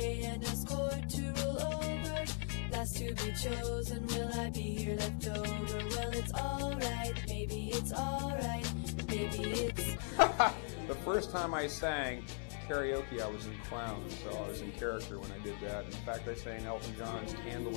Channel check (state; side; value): silent; right; 52 dB below the other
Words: and escort to roll over. Last to be chosen, will I be here left over? Well, it's alright, maybe it's alright, maybe it's... The first time I sang karaoke, I was in clown, so I was in character when I did that. In fact, I sang Elton John's Candle